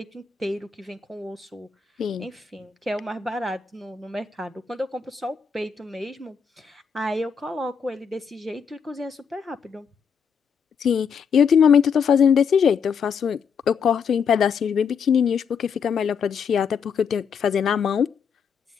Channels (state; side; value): quieter; right; 6.5 dB